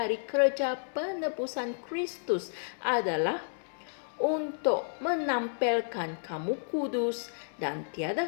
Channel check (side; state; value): right; silent; digital silence